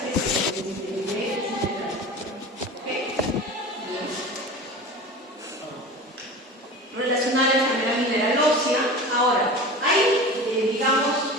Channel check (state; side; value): normal; both; correlation 0.34